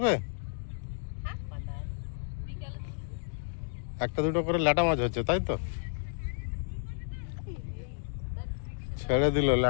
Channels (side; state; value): right; silent; digital silence